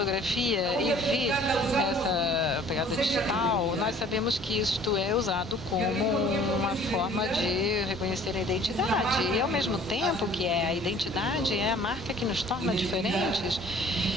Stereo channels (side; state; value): both; normal; correlation 0.52